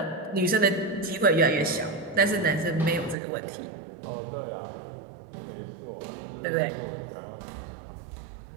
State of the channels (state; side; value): drops out; left; at 3.2 s